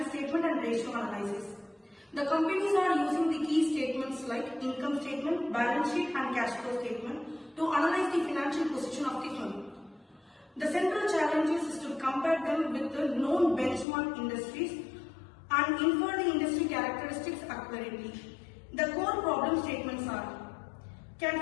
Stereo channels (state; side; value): drops out; right; at 13.9 s